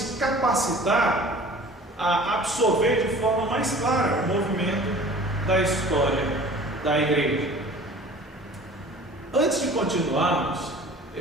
capacitar a absorver de forma mais clara o movimento da história da igreja. Antes de continuarmos,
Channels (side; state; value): both; normal; correlation 0.45